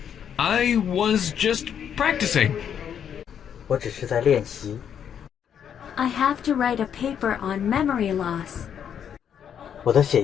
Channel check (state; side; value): quieter; right; 8.6 dB